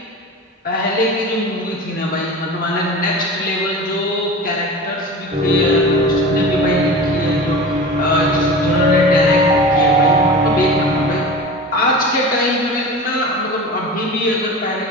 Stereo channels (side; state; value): both; normal; correlation 0.33